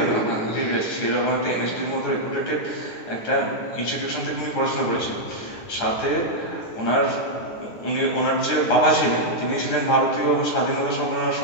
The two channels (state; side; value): late; right; 9.8 ms